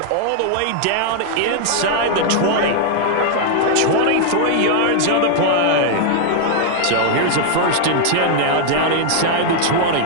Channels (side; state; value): both; different; correlation 0.00